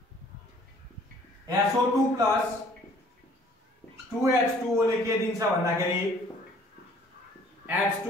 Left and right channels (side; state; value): both; normal; correlation 0.56